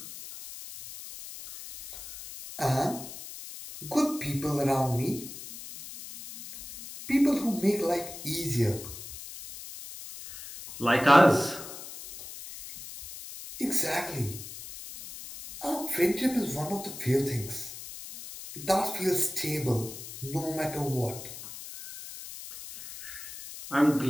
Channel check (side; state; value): left; noise; hiss, 12 dB below the sound